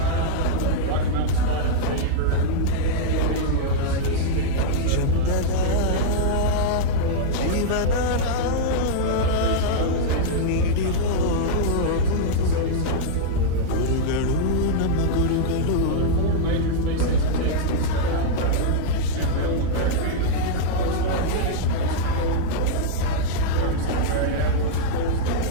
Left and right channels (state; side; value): different; both; correlation -0.02